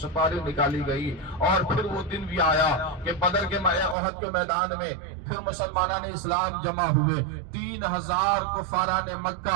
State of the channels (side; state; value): left; drops out; at 4.0 s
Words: سپاری نکالی گئی۔ اور پھر وہ دن بھی آیا کہ بدر کے احد کے میدان میں پھر مسلمانان اسلام جمع ہوئے، 3000 کفاران